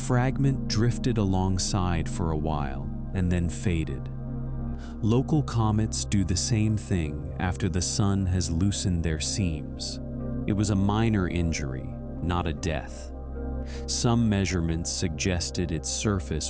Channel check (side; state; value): both; identical; correlation 1.00